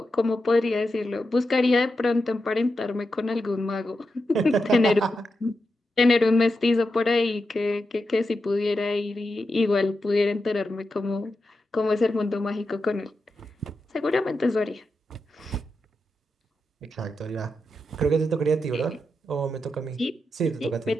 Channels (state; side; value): normal; both; correlation 0.88